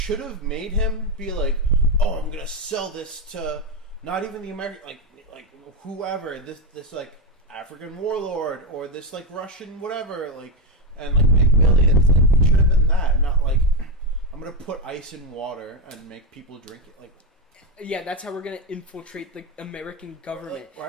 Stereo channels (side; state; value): both; normal; correlation 0.10